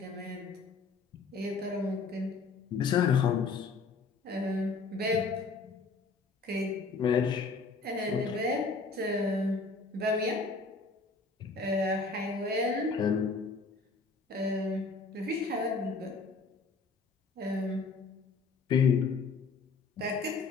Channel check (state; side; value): quieter; right; 4.2 dB